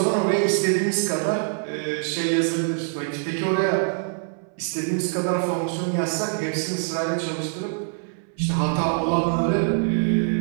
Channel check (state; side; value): silent; left; 63 dB below the other